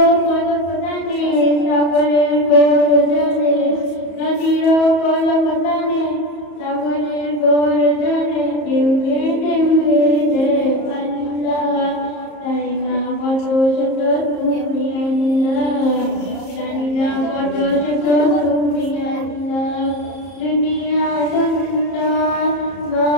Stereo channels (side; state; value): right; late; 34 ms